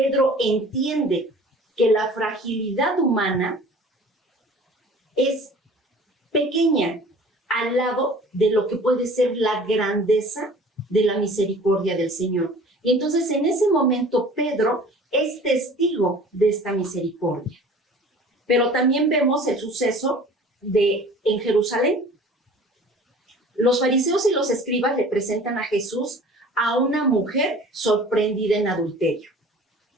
entiende que la fragilidad humana es pequeña al lado de lo que puede ser la grandeza de la misericordia del Señor. Y entonces en ese momento Pedro es testigo de esta misericordia. Pero también vemos el suceso en Jerusalén. Los fariseos y los escribas le presentan a Jesús a una mujer sorprendida en adulterio.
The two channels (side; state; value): both; normal; correlation 0.46